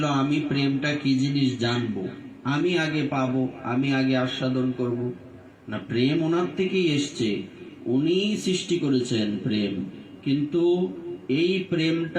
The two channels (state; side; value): identical; both; correlation 1.00